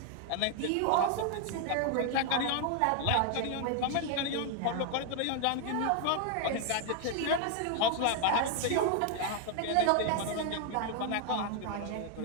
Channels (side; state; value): both; different; correlation 0.00